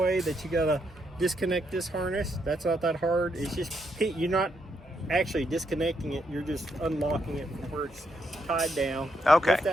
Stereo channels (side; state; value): both; normal; correlation 0.78